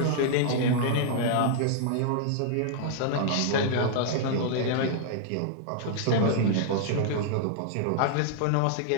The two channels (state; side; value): different; both; correlation -0.01